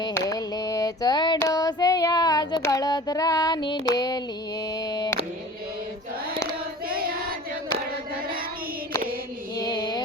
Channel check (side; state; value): both; normal; correlation 0.41